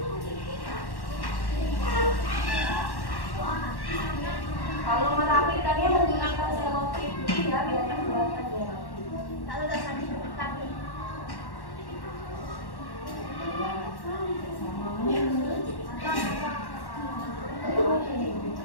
merapikannya menggunakan selotip putih ya, biar kelihatan dia rapi. Kalau udah tadi tapi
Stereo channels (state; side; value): late; right; 1.1 ms